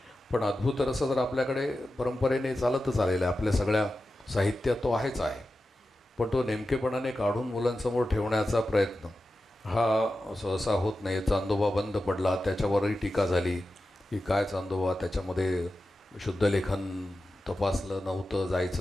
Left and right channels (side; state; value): both; normal; correlation 0.92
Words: पण अद्भुत रस जर आपल्याकडे परंपरेने चालतच आलेला आहे, आपल्या सगळ्या साहित्यात तो आहेच आहे, पण तो नेमकेपणाने काढून मुलांसमोर ठेवण्याचा प्रयत्न हा सहसा होत नाही. चांदोबा बंद पडला, त्याच्यावरही टीका झाली की काय चांदोबा, त्याच्यामध्ये शुद्धलेखन तपासलं